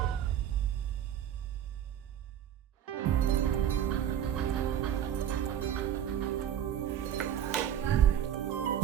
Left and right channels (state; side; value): quieter; left; 10.1 dB